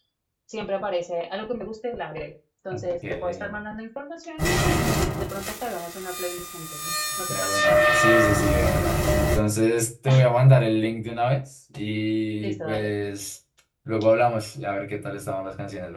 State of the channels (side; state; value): both; identical; correlation 1.00